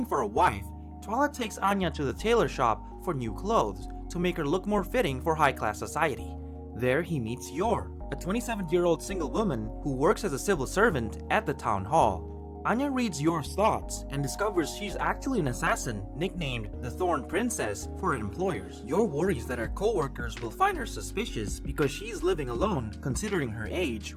for a wife, Twilight takes Anya to the tailor shop for new clothes to make her look more fitting for high-class society. There he meets Yor, a 27-year-old single woman who works as a civil servant at the town hall. Anya reads Yor's thoughts and discovers she's actually an assassin nicknamed the Thorn Princess for her employers. Yor worries that her co-workers will find her suspicious because she's living alone considering her age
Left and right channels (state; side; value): identical; both; correlation 1.00